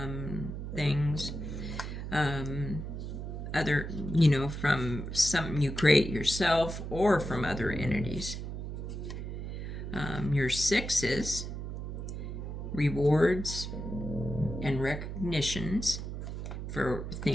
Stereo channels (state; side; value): noise; right; hum, 6 dB below the sound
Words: things, from something you create yourself or from other entities. Your sixes, rewards and recognitions for